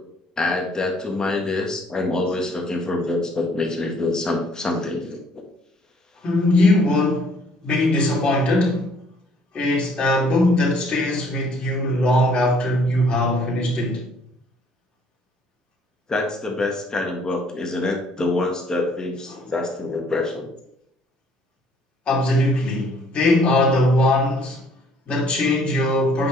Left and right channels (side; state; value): both; normal; correlation 0.61